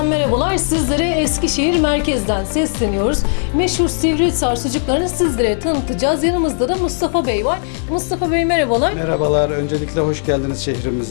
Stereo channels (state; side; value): silent; right; 68 dB below the other